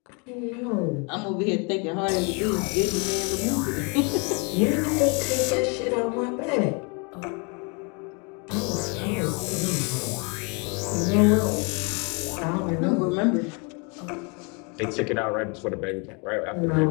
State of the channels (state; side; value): quieter; right; 33.1 dB